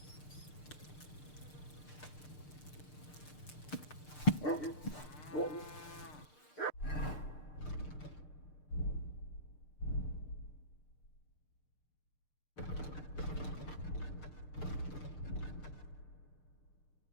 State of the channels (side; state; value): right; late; 6.6 ms